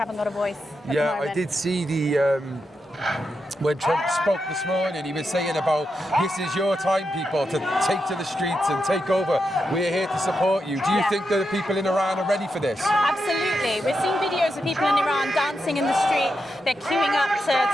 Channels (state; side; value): normal; both; correlation 0.86